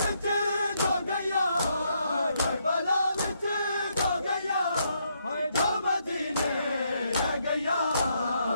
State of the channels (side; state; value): both; inverted; correlation -0.76